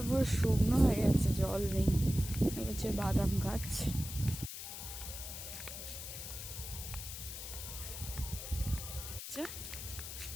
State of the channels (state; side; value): noise; left; hiss, 8 dB below the sound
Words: পুরো শুকনো হয়ে গেছে, জল নেই। এটা হচ্ছে বাদাম গাছ।